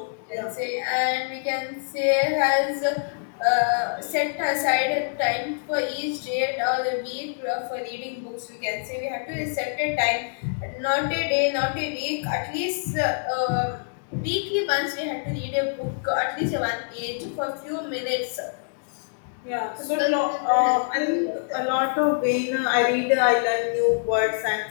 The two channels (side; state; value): right; silent; digital silence